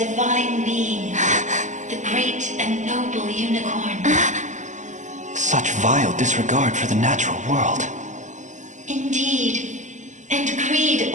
divine being, the great and noble unicorn. Such vile disregard for the natural world. Indeed, and greed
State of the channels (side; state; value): left; late; 0.35 ms